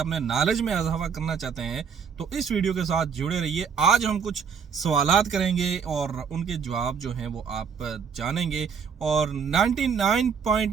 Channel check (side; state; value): left; quieter; 6.6 dB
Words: نالج میں اضافہ کرنا چاہتے ہیں تو اس ویڈیو کے ساتھ جڑے رہیے۔ آج ہم کچھ سوالات کریں گے اور ان کے جواب جو ہیں وہ آپ جانیں گے، اور